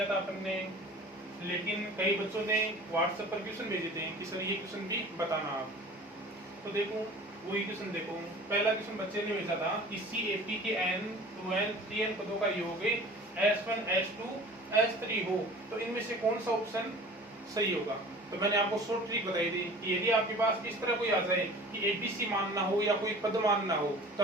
था अपन ने, लेकिन कई बच्चों ने व्हाट्सएप पर क्वेश्चन भेजे थे कि सर ये क्वेश्चन भी बताना आप। तो देखो वही क्वेश्चन देखो, पहला क्वेश्चन बच्चे ने भेजा था किसी एपी के n 2n 3n पदों का योग S1 S2 S3 हो तो इनमें से कौन सा ऑप्शन सही होगा। तो मैंने आपको शॉर्ट ट्रिक बताई थी कि यदि आपके पास इस तरह कोई आ जाए कि एबीसी मानना हो या कोई पद मानना हो तो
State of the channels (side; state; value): both; normal; correlation 0.43